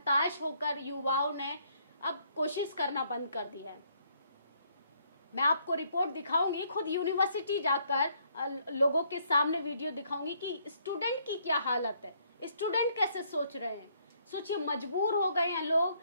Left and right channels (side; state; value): both; inverted; correlation -0.69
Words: होकर युवाओं ने अब कोशिश करना बंद कर दिया है। मैं आपको रिपोर्ट दिखाऊंगी, खुद यूनिवर्सिटी जाकर लोगों के सामने वीडियो दिखाऊंगी कि स्टूडेंट की क्या हालत है, स्टूडेंट कैसे सोच रहे हैं। सोचिए, मजबूर हो गए हैं लोग